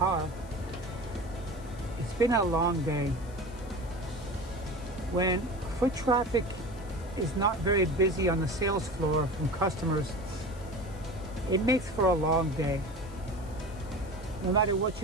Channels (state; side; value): noise; left; hiss, 24 dB below the sound